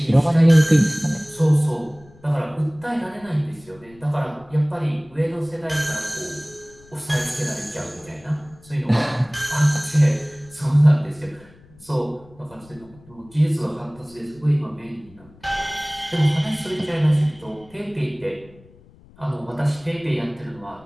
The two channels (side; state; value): left; noise; rumble, 25 dB below the sound